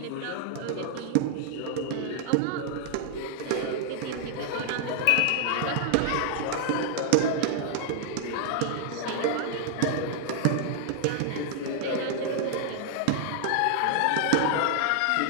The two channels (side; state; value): both; different; correlation 0.00